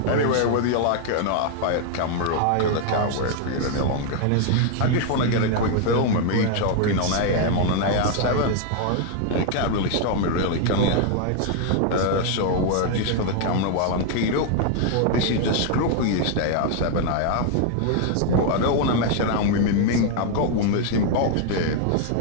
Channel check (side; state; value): both; different; correlation 0.00